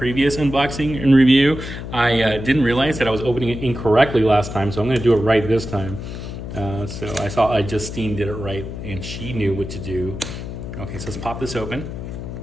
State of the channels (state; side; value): noise; left; hum, 8 dB below the sound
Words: unboxing and review, I didn't realize that I was opening it incorrectly last time, so I'm going to do it right this time. So I saw Justine did it right, and she knew what to do. Okay, so let's pop this open.